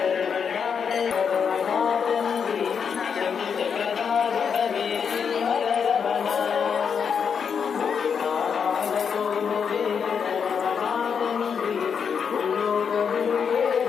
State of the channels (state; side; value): quieter; right; 6.7 dB